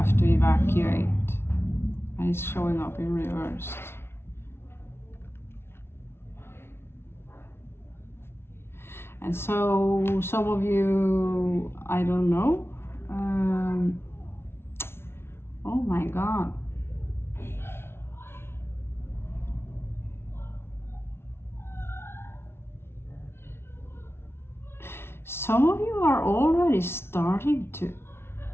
to evacuate, and it's showing up in reverse. And so some of you, I don't know, oh my God. Some of you are already starting to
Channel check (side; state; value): right; late; 0.12 ms